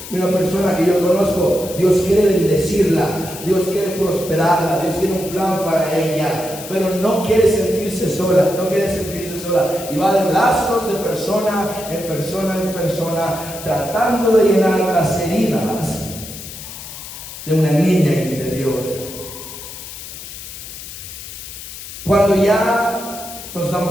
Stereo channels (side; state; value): left; noise; hiss, 12 dB below the sound